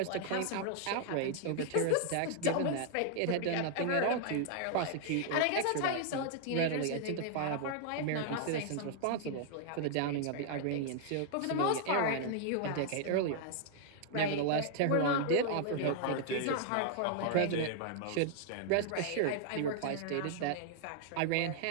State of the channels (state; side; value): different; both; correlation -0.01